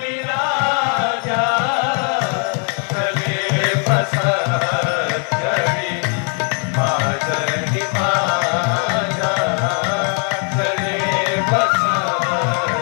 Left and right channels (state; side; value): quieter; right; 38.7 dB